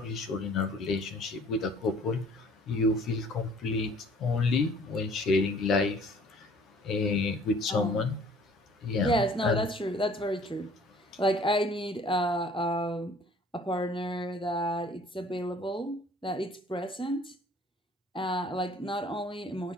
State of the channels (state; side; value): normal; both; correlation 0.54